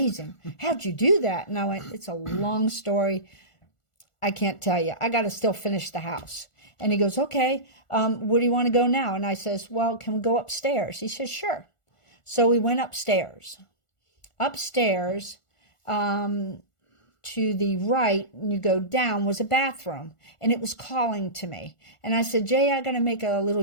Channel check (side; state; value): right; late; 1.4 ms